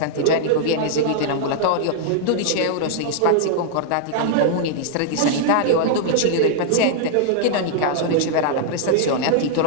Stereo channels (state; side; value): different; both; correlation -0.01